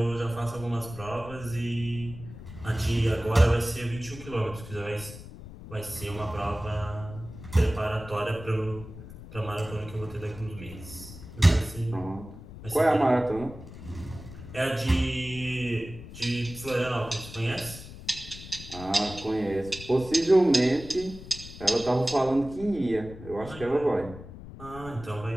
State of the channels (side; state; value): left; noise; rumble, 14 dB below the sound